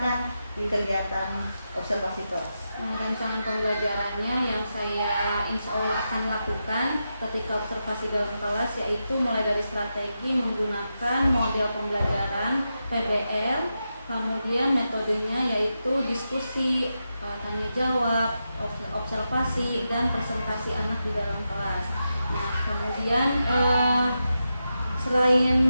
di kegiatan observasi kelas. Rancangan pembelajarannya yang saya insya Allah akan lakukan ketika observasi dalam kelas, yaitu mulai dari strategi menggunakan model pembelajaran PBL, kemudian metodenya yaitu diskusi, tanya jawab, observasi, dan presentasi anak di dalam kelas. Nah, kemudian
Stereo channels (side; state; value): both; inverted; correlation -0.88